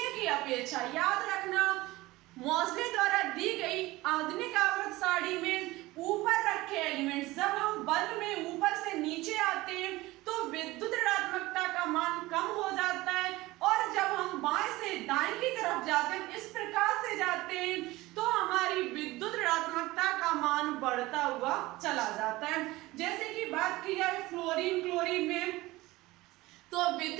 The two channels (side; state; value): left; quieter; 19.4 dB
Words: की अपेक्षा। याद रखना, मोज़ले द्वारा दी गई आधुनिक आवर्त सारणी में ऊपर रखे एलिमेंट्स जब हम बल्ब में ऊपर से नीचे आते हैं तो विद्युत ऋणात्मकता का मान कम हो जाता है, और जब हम बाएं से दाएं की तरफ जाते हैं, इस प्रकार से जाते हैं, तो हमारी विद्युत ऋणात्मकता का मान बढ़ता हुआ चला जाता है। जैसे कि बात की जाए फ्लोरीन में, तो